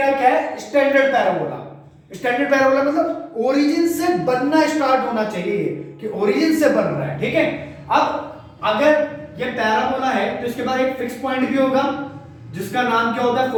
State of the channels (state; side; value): identical; both; correlation 1.00